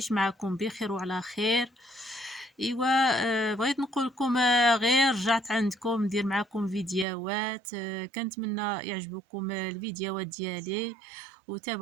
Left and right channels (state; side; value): drops out; left; at 7.1 s